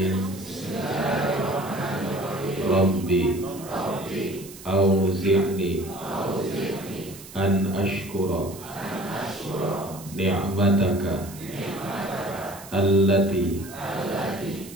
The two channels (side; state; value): right; noise; hiss, 16 dB below the sound